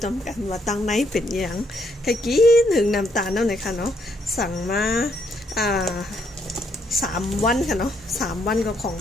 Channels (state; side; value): normal; both; correlation 0.73